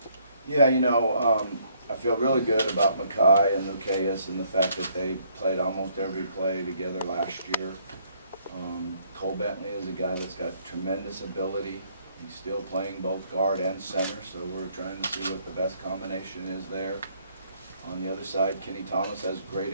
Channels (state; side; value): inverted; both; correlation -0.66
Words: Yeah, you know, I feel really good about Mackay and Lucas and the fact that they played almost every play together last year. Cole Bentley is a guy that's got tremendous ability. He's still playing both guard and center, so we're trying to see what the best combination is there. On the other side, Kenny Thomas has great